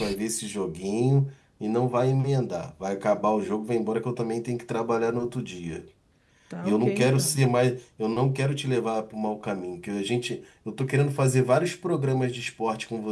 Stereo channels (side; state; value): both; identical; correlation 1.00